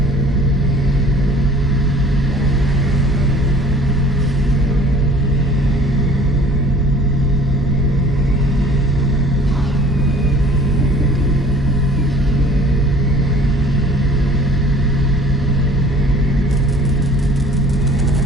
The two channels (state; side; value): normal; both; correlation 0.50